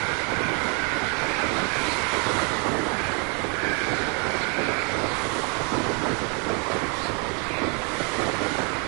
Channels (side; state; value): left; quieter; 35.4 dB